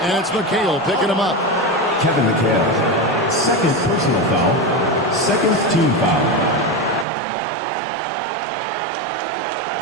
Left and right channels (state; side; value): drops out; left; at 7.1 s